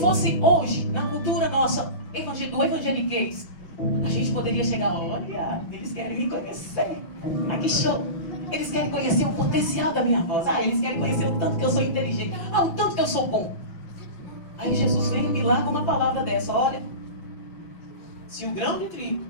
hoje, na cultura nossa, do evangeliquez, a gente poderia chegar, olha, eles querem me conhecer. Ah, que show! Eles querem conhecer o potencial da minha voz. Ah, eles querem conhecer o tanto que eu sou inteligente. Ah, o tanto que eu sou bom. Aí Jesus vem e me larga uma palavra dessa. Olha, se o grão de trigo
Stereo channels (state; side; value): late; right; 5.6 ms